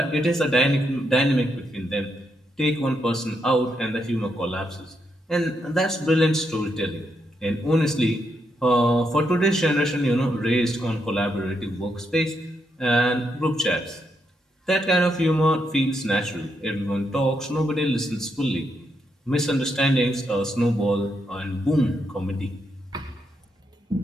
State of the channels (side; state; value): both; normal; correlation 0.80